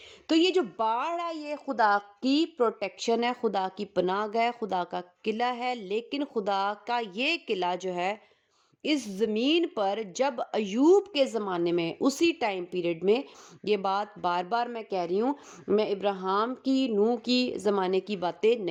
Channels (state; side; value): identical; both; correlation 1.00